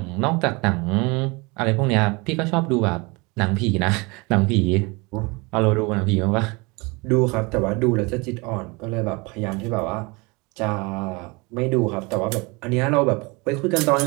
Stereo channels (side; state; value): left; quieter; 27.1 dB